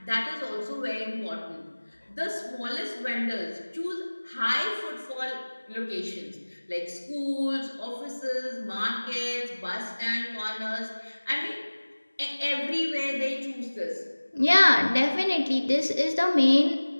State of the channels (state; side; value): inverted; both; correlation -1.00